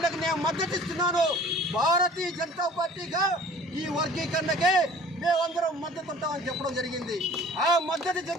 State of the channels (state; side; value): normal; both; correlation 0.48